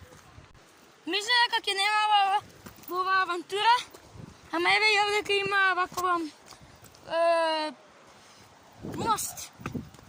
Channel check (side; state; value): both; identical; correlation 1.00